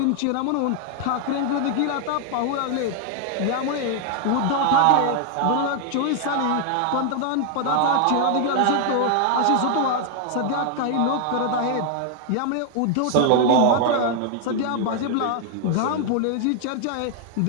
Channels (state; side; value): different; both; correlation 0.00